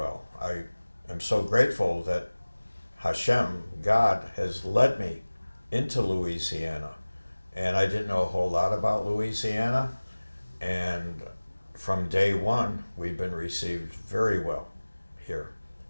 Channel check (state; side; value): inverted; both; correlation -1.00